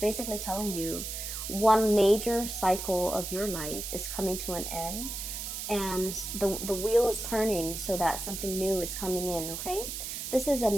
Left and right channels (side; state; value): right; noise; hiss, 6 dB below the sound